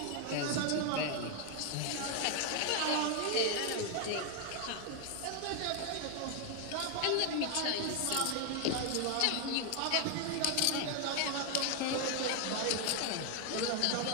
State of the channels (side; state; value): both; different; correlation 0.01